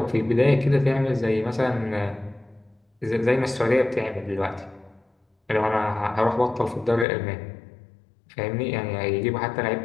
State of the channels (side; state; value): right; drops out; at 7.1 s